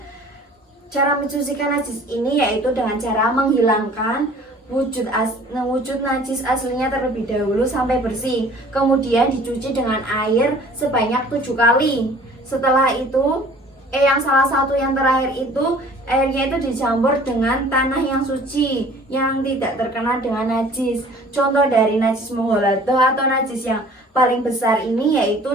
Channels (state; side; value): normal; both; correlation 0.50